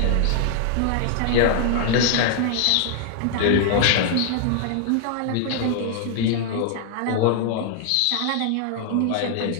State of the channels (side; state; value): both; different; correlation 0.00